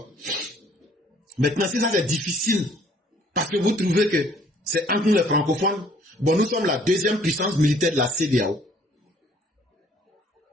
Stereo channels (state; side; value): normal; both; correlation 0.59